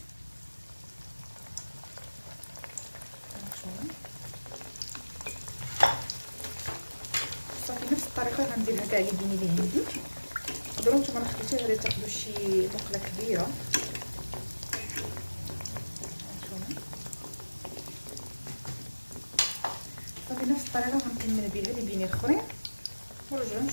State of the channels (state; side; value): inverted; both; correlation -1.00